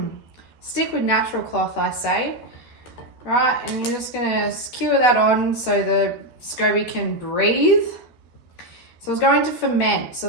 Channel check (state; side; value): late; right; 13 ms